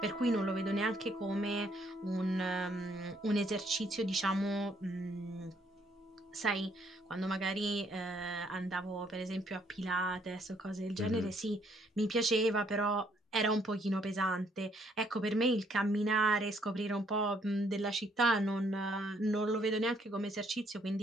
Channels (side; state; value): both; normal; correlation 0.68